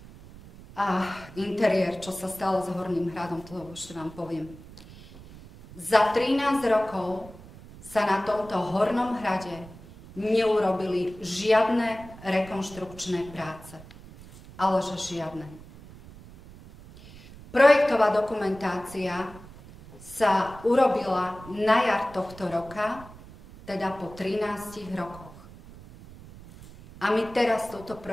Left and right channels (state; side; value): noise; right; rumble, 18 dB below the sound